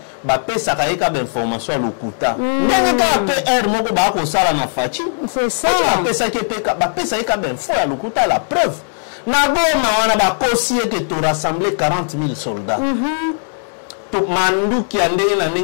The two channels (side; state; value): right; silent; 68 dB below the other